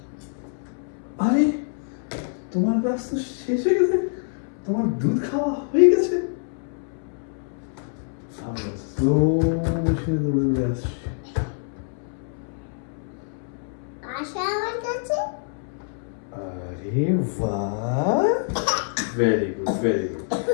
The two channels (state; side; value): silent; right; 62 dB below the other